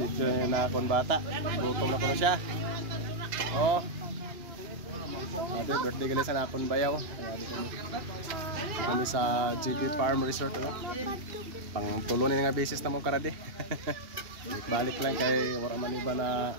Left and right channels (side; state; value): left; late; 2.8 ms